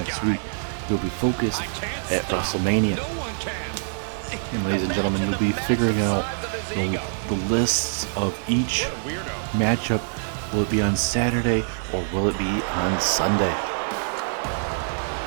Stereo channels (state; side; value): silent; left; 62 dB below the other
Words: week, he'll be focused at WrestleMania. And ladies and gentlemen, you'll be figuring out the lists of each matchup. Will it be on Saturday or will it be on Sunday?